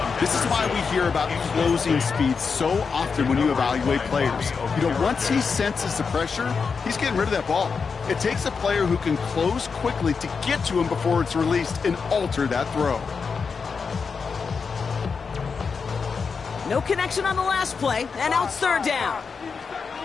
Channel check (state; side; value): quieter; right; 5.4 dB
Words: This is why we hear about closing speed so often when you evaluate players. You know, once he senses the pressure, he's getting rid of that ball. It takes a player who can close quickly to get to him before it's released and alter that throw. No connection on the last play, and now it's 3rd down.